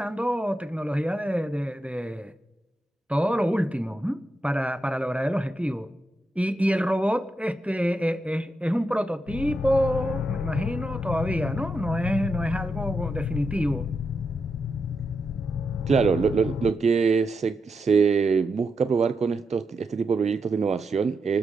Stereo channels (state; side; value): normal; both; correlation 0.85